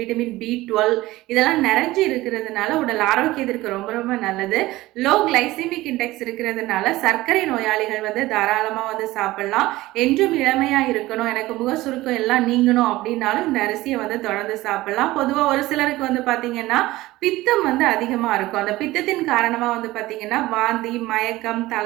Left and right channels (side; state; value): left; quieter; 18.0 dB